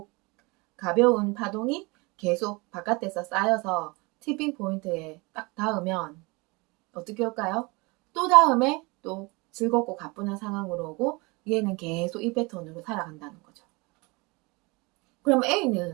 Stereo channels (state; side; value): quieter; left; 26.3 dB